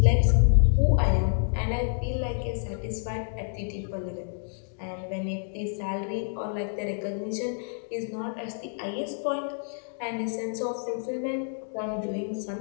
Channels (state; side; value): silent; right; digital silence